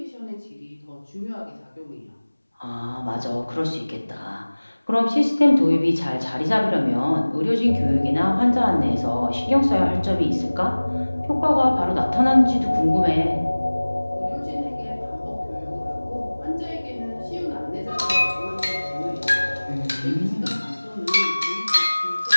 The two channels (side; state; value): both; inverted; correlation -1.00